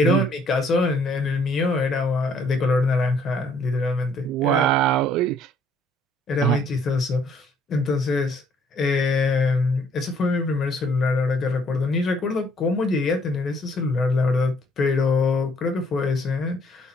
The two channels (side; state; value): both; normal; correlation 0.64